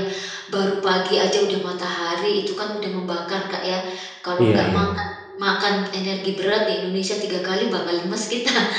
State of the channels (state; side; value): identical; both; correlation 1.00